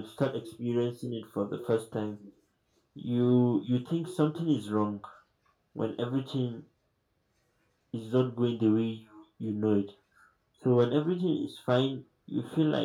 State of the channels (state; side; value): identical; both; correlation 1.00